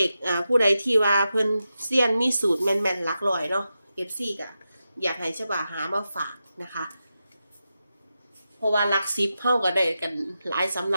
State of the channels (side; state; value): both; inverted; correlation -0.90